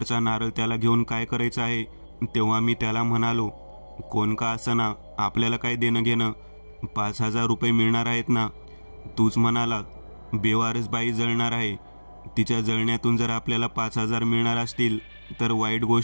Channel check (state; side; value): inverted; both; correlation -1.00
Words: नारळ त्याला घेऊन काय करायचं आहे? तेव्हा मी त्याला म्हणालो, कोण का असना, आपल्याला काय देणं घेणं, 5000 रुपये मिळणार आहेत ना? तूच म्हणाला, बेवारस बाई जळणार आहे, तिच्या जळण्यातून जर आपल्याला 5000 मिळणार असतील तर वाईट